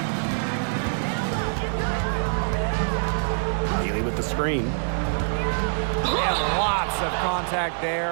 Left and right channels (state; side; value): silent; left; 62 dB below the other